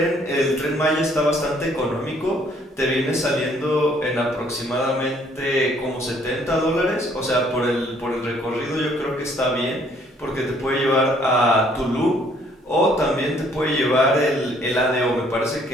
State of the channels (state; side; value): normal; both; correlation 0.63